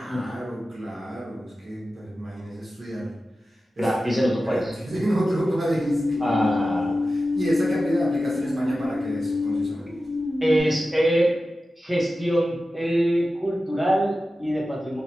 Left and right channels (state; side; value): normal; both; correlation 0.94